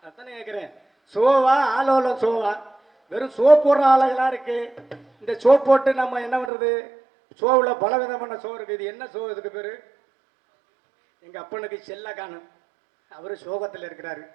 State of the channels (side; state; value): left; drops out; at 6.5 s